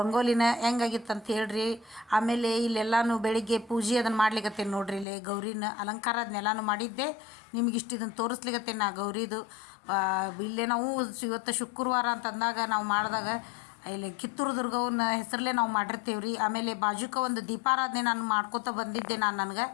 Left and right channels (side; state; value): right; drops out; at 5.1 s